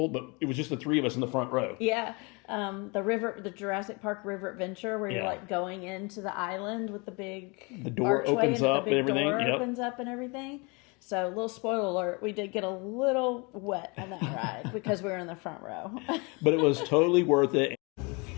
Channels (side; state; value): right; quieter; 29.5 dB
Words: but it was just the 3 of us in the front row. Yeah. The Jurassic Park River Adventure, where you're like going into the island with the door opens up and everything. Opens up and everything. So, little spoiler alert, we did get a little wet on that ride because we were in the front row. But it was totally worth it.